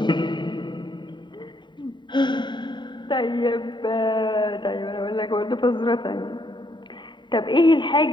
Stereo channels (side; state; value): right; late; 0.22 ms